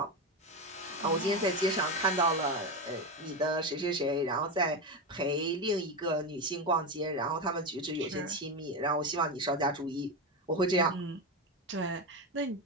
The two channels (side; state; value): both; normal; correlation 0.15